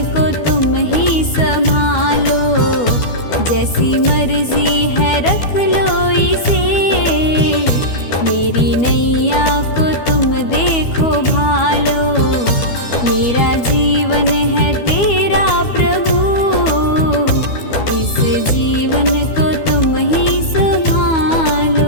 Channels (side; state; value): right; late; 12 ms